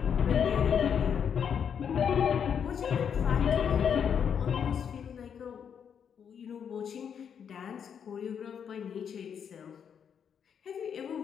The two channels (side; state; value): right; quieter; 7.7 dB